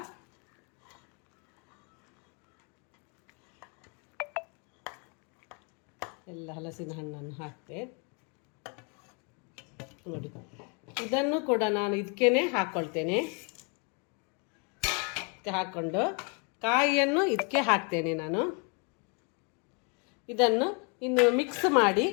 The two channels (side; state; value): right; quieter; 35.5 dB